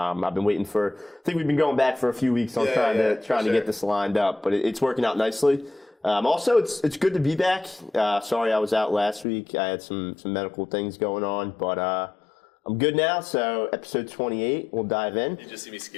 been waiting I think we've been going back for a few weeks on trying to get this lined up, but it's working out nicely. Also, it's good to be back. Sorry I was out last week. I had some medical things going on, but I'm good now. So episode 28, we'll dive in. You just see me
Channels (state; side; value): drops out; right; at 9.2 s